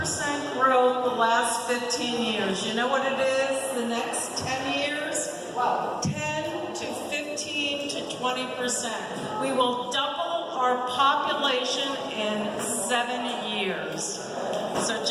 growth the last 15 years. You know what it is the next 10 years? Wow. 10 to 15 to 20%. We will double our population in 7 years. So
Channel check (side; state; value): both; identical; correlation 1.00